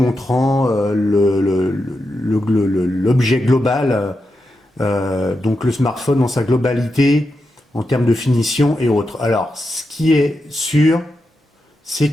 l'objet global, donc le smartphone dans sa globalité, en termes de finition et autres. Alors, ce qui est sûr, c'est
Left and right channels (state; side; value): normal; both; correlation 0.87